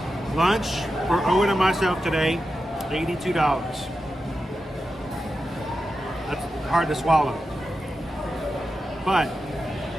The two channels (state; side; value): normal; both; correlation 0.90